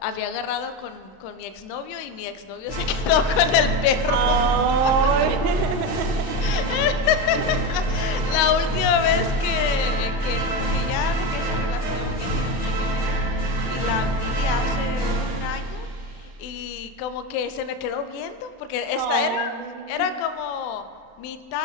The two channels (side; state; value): right; late; 32 ms